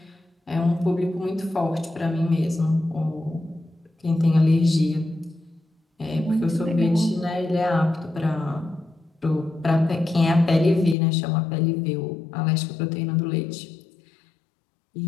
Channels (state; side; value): drops out; right; at 11.0 s